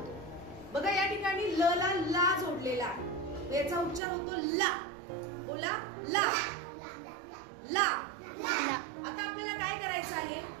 बघा या ठिकाणी ल ला ला जोडलेला आहे, याचा उच्चार होतो ला. बोला ला ला. आता आपल्याला काय करायचं आहे,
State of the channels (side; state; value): left; drops out; at 4.0 s